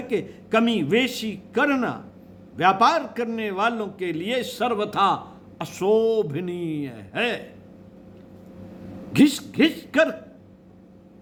कमी वेशी करना व्यापार करने वालों के लिए सर्वथा अशोभनीय है। घिस कर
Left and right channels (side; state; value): both; identical; correlation 1.00